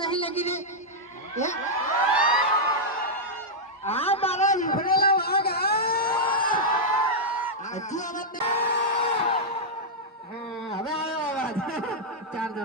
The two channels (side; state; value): both; normal; correlation -0.07